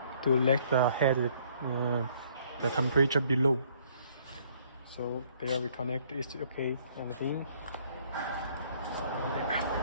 let the head the temperature below. So there we connect. It's okay, everything.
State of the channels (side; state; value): both; inverted; correlation -0.62